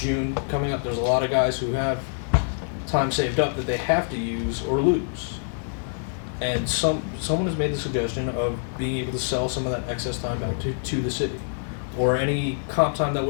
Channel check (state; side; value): silent; right; digital silence